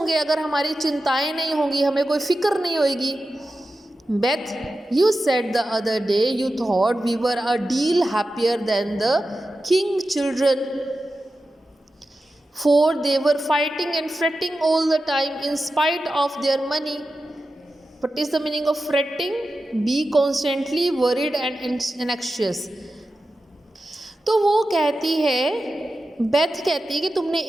अगर हमारी चिंताएं नहीं होंगी, हमें कोई फिक्र नहीं होगी। Beth you said the other day you thought we were a deal happier than the King children for they were fighting and fretting all the time in spite of their money. What is the meaning of fretting? Be constantly worried and anxious. तो वो कहती है, Beth कहती है कि तुमने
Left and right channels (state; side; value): normal; both; correlation 0.92